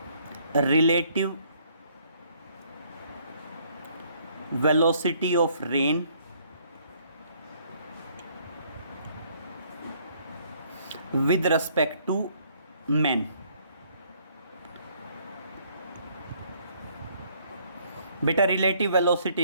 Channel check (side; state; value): both; inverted; correlation -0.64